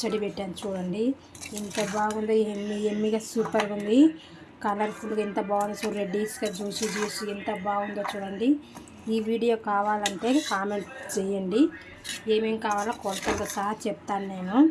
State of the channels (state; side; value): identical; both; correlation 1.00